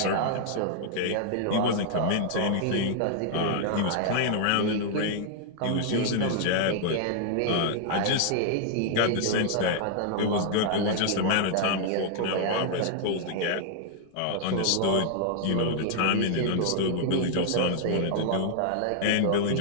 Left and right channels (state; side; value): different; both; correlation 0.00